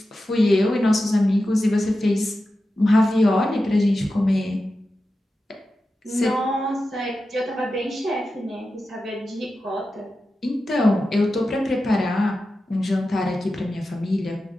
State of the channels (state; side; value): normal; both; correlation 0.92